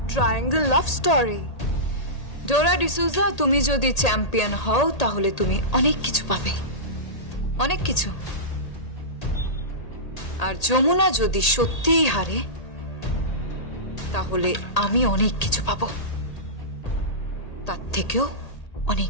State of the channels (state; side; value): late; right; 1.8 ms